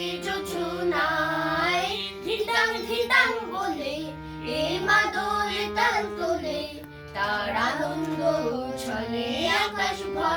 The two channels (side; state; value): both; identical; correlation 1.00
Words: যোছনায়। ধিতাং ধিতাং বলে এই মাদলে তাল তোলে, তার আনন্দ ছলে আকাশ